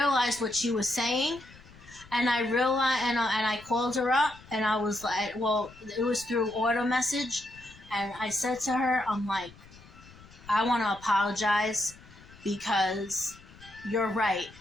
what she was saying, and I realized, and I called her up, and I was like, well, it was through auto message, and I said to her, I'm like, I want to apologize because you're right.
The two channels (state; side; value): noise; left; rumble, 22 dB below the sound